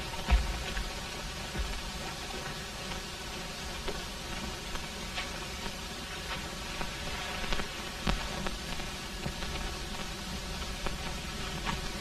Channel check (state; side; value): noise; left; rumble, 15 dB below the sound